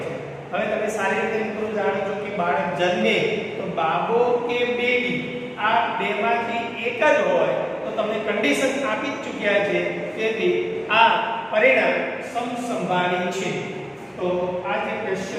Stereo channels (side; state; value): both; identical; correlation 1.00